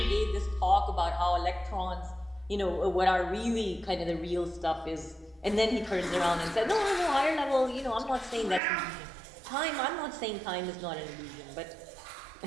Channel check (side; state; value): left; drops out; at 8.6 s